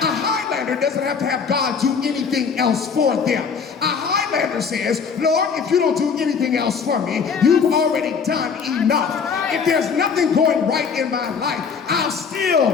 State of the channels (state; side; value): quieter; right; 6.0 dB